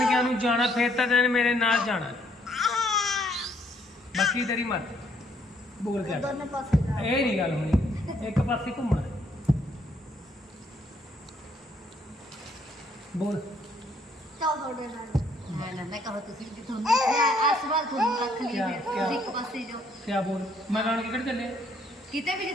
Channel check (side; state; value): both; normal; correlation 0.67